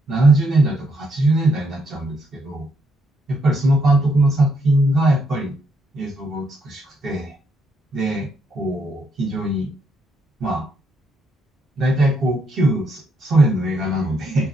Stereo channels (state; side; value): normal; both; correlation 0.75